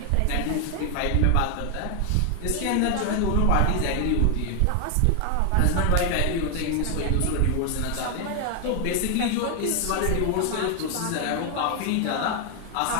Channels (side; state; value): both; different; correlation 0.00